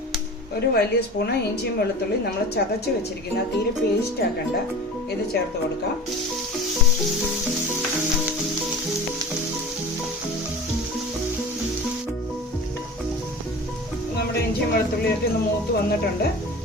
ഒരു വലിയ സ്പൂണ് ഇഞ്ചിയും വെളുത്തുള്ളി നമ്മൾ ചതച്ച് വെച്ചിരിക്കുന്ന, തീരെ പേസ്റ്റ് ആക്കണ്ട, ഇത് ചേർത്ത് കൊടുക്കാം. നമ്മുടെ ഇഞ്ചിയും വെളുത്തുള്ളിയൊക്കെ ഒന്ന് മൂത്ത് വന്നിട്ടുണ്ട്.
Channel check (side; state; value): both; normal; correlation 0.36